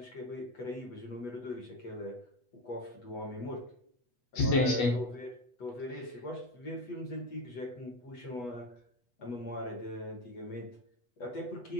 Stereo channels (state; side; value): late; right; 8.2 ms